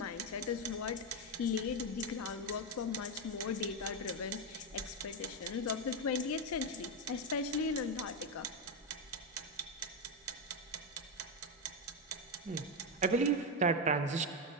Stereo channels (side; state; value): both; normal; correlation 0.07